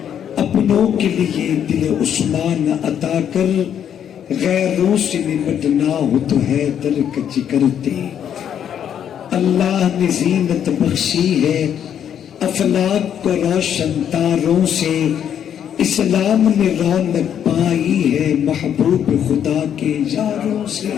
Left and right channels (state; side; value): quieter; right; 9.1 dB